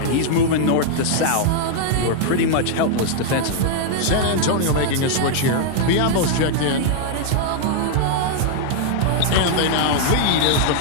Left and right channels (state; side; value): different; both; correlation -0.01